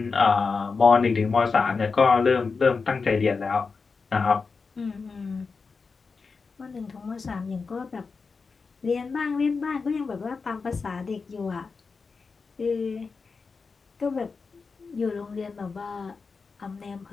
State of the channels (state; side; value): quieter; right; 4.7 dB